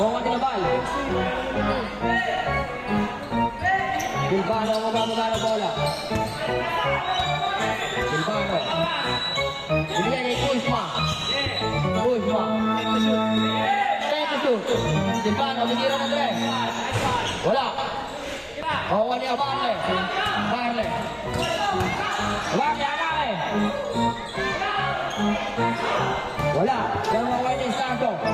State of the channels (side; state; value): both; identical; correlation 1.00